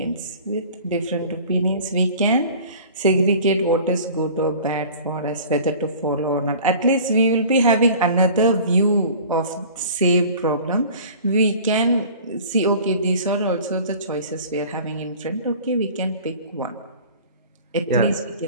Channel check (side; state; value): both; inverted; correlation -0.43